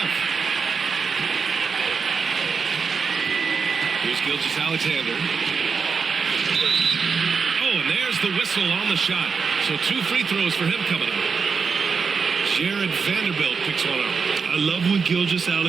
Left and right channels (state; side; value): quieter; left; 5.5 dB